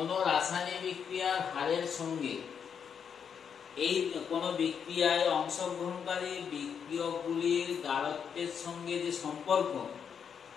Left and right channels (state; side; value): quieter; right; 7.3 dB